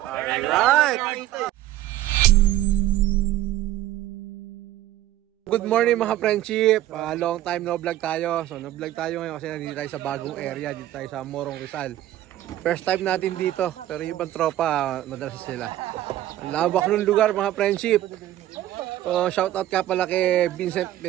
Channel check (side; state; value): left; quieter; 13.9 dB